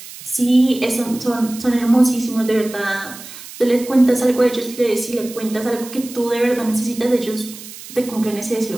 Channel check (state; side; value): noise; right; hiss, 15 dB below the sound